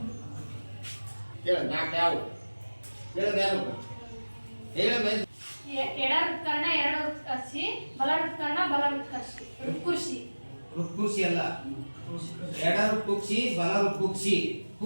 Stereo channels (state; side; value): inverted; both; correlation -1.00